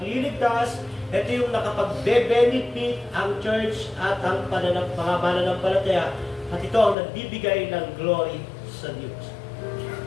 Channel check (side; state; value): right; drops out; at 7.0 s